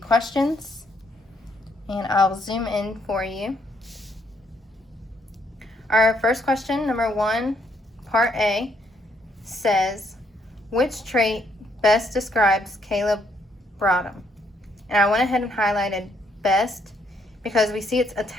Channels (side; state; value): both; normal; correlation 0.71